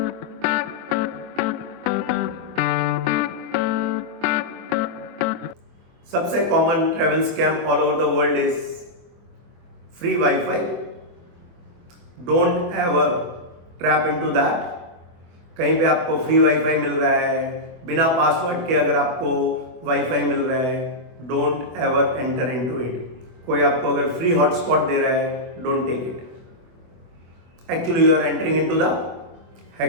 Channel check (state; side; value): late; left; 24 ms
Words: सबसे common travel scam all over the world is free WiFi. Don't ever trap into that. कहीं पे आपको फ्री वाईफाई मिल रहा है, बिना पासवर्ड के अगर आपको वाईफाई मिल रहा है, don't ever enter into it. कोई आपको अगर फ्री हॉटस्पॉट दे रहा है, don't take it. Actually you are entering into the